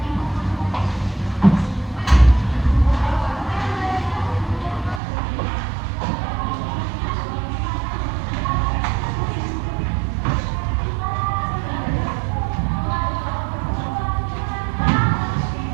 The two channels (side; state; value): left; drops out; at 5.0 s